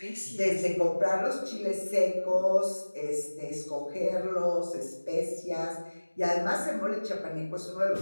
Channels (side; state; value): both; inverted; correlation -1.00